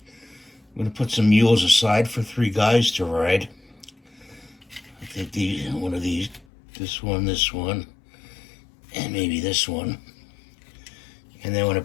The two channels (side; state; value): right; drops out; at 6.5 s